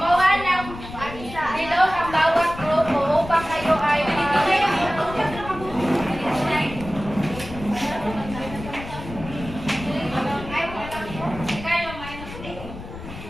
ng bilog ang bawat grupo upang kayo ay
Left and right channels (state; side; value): noise; left; rumble, 12 dB below the sound